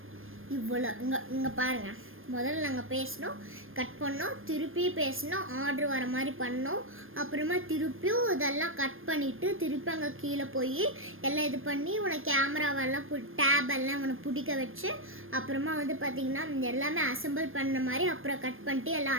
இவ்வளோ இங்கே பாருங்கள், முதல்ல நாங்கள் பேசினோம், கட் பண்ணோம், திருப்பி பேசினோம், ஆர்டர் வர மாதிரி பண்ணோம், அப்புறமா திருப்பியும் இதெல்லாம் கட் பண்ணிவிட்டு திருப்பி அங்கே கீழே போய் எல்லாம் இது பண்ணி இவனை கேமராவெல்லாம் டேபெல்லாம் இவனை பிடிக்க வச்சு அப்புறமா வந்து பார்த்திங்கன்னா எல்லாமே அசம்பிள் பண்ண மாதிரி அப்புறம் கட் பண்ணிட்டு எல்லாம்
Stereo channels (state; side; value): late; left; 0.60 ms